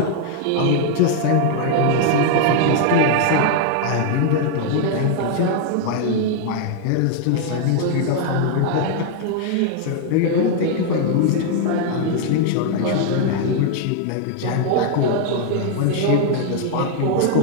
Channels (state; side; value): different; both; correlation 0.00